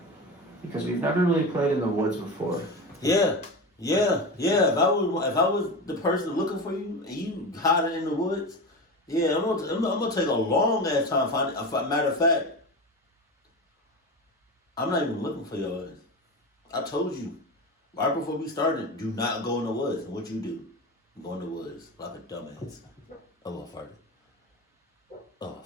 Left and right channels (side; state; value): both; normal; correlation 0.25